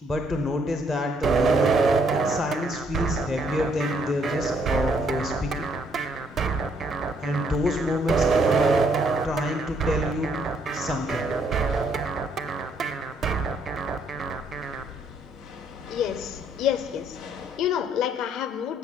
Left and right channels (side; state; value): both; normal; correlation 0.69